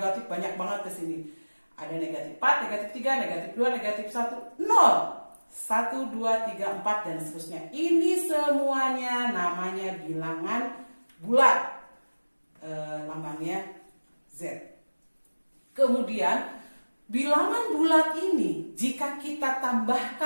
banyak banget di sini. Ada negatif 4, negatif 3, negatif 2, negatif 1, 0. 1, 2, 3, 4 dan seterusnya. Ini semuanya namanya bilangan bulat. Lambangnya Z. Kemudian bilangan bulat ini jika kita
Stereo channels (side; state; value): both; inverted; correlation -1.00